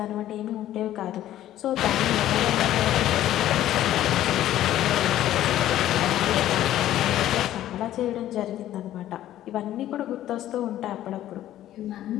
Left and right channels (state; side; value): quieter; right; 13.0 dB